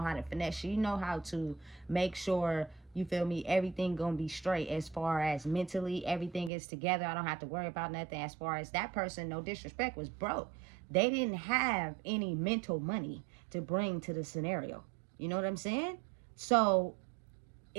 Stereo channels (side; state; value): left; drops out; at 6.5 s